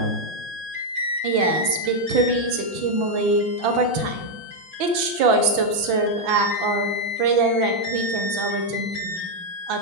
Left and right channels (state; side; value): late; left; 6.0 ms